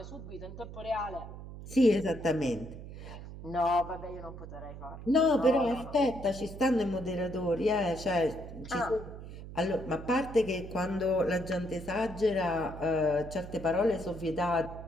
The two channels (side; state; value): right; noise; hum, 12 dB below the sound